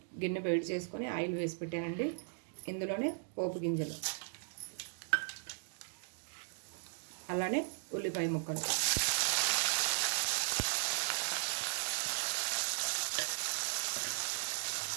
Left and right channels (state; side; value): silent; left; digital silence